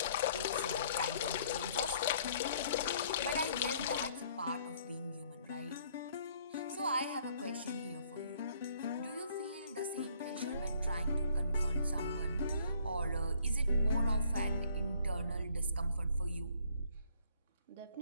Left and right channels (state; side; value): inverted; both; correlation -0.62